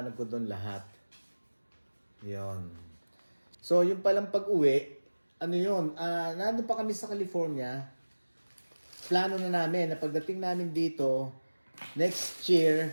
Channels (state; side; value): inverted; both; correlation -1.00